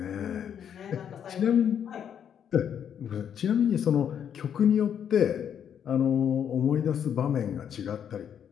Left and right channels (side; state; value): right; quieter; 8.6 dB